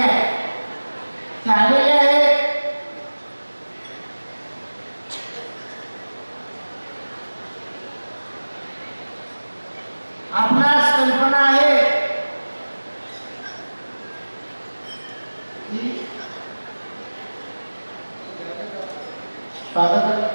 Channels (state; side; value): inverted; both; correlation -1.00